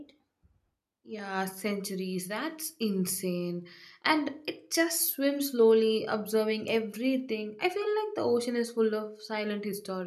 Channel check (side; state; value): both; identical; correlation 1.00